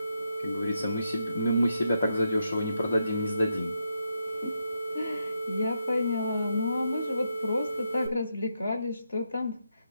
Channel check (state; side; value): inverted; both; correlation -0.82